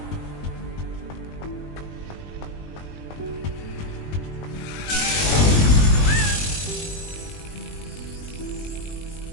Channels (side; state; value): right; late; 20 ms